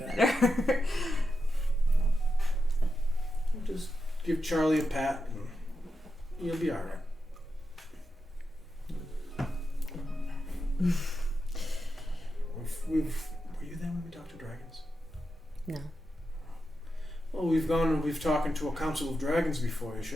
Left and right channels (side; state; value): both; normal; correlation 0.88